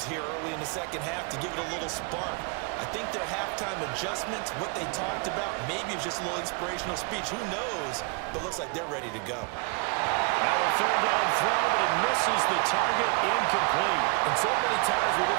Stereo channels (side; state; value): left; quieter; 32.7 dB